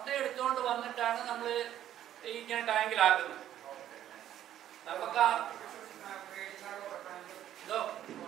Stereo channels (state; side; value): quieter; left; 11.6 dB